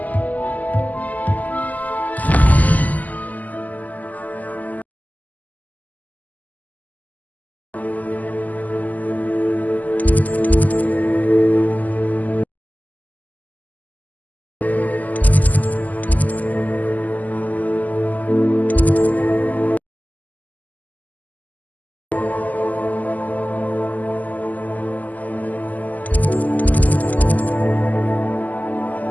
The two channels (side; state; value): right; late; 0.079 ms